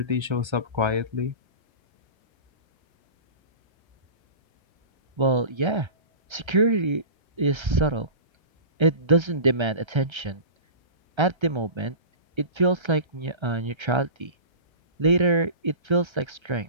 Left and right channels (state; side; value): late; left; 1.3 ms